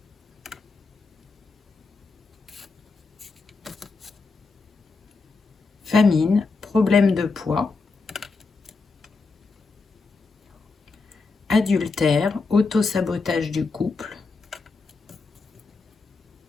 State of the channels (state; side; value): quieter; right; 4.1 dB